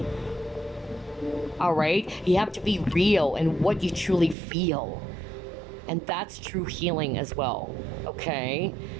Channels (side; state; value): left; drops out; at 4.4 s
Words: All right? You have to be real in what you truly feel. And that's true healing as well, okay?